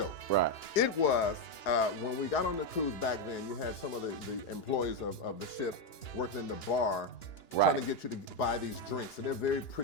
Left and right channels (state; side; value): late; right; 2.9 ms